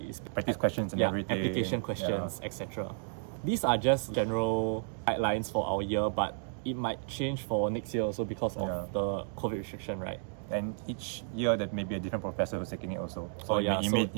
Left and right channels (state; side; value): silent; left; digital silence